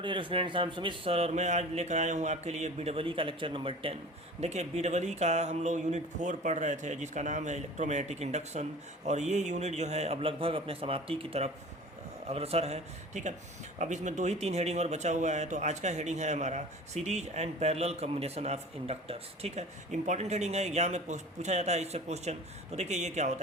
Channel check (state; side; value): normal; both; correlation 0.40